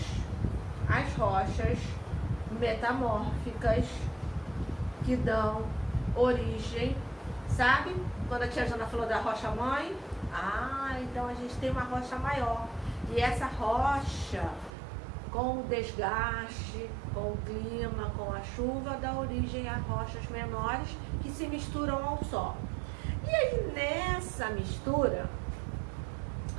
as rochas metamórficas que dão origem, sabe? Quando a tia Jana falou da rocha mãe, então a gente tem uma rocha maior. E essa rocha, com o desgaste, com o clima, com a chuva, dá origem a rochas menores que se misturam ao solo. E aí nessa mistura,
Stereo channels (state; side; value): drops out; left; at 14.7 s